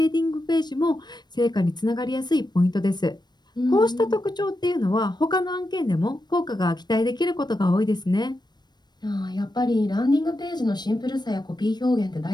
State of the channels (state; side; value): late; right; 0.21 ms